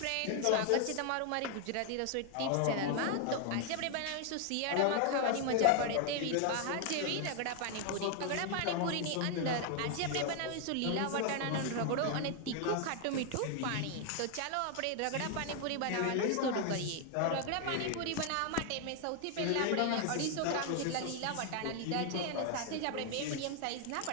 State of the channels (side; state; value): both; different; correlation 0.00